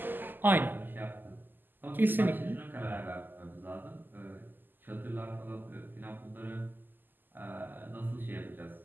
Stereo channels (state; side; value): late; left; 0.090 ms